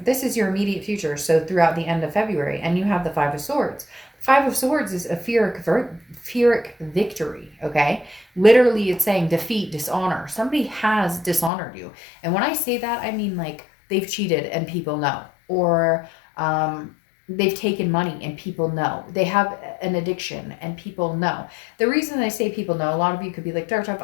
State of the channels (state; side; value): drops out; right; at 11.5 s